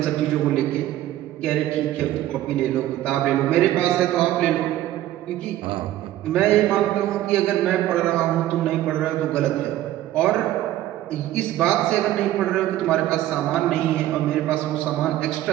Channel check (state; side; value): quieter; left; 13.9 dB